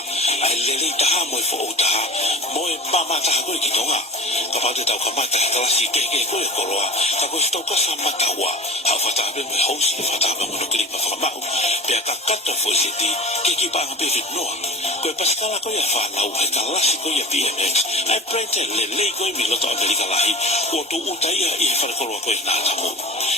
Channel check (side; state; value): both; normal; correlation 0.33